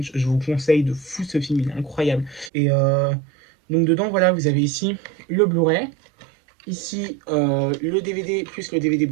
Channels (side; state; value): left; drops out; at 2.5 s